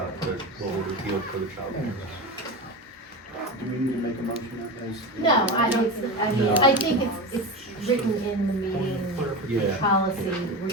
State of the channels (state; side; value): normal; both; correlation 0.24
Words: what we repealed for the child. Do we need to make a motion as? No, I don't, I mean, I think it's written in the meeting Yeah. policy, we're